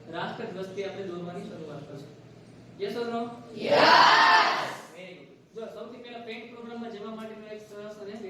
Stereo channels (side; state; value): both; identical; correlation 1.00